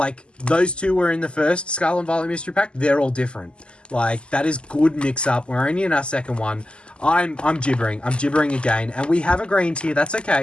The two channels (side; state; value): right; late; 0.051 ms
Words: those two were in the first Scarlet and Violet mystery pack. They're all different. Like, that is good mix up. We're only in our second one. I'm gibbering. I'm gibbering again. And we have a green tier. That's